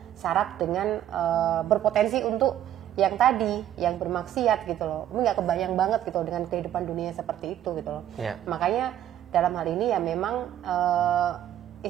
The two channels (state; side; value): quieter; left; 11.5 dB